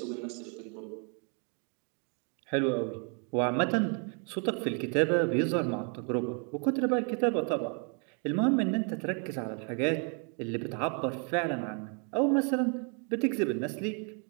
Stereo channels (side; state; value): left; quieter; 39.1 dB